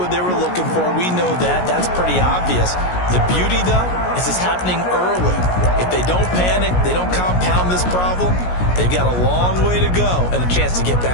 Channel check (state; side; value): late; right; 17 ms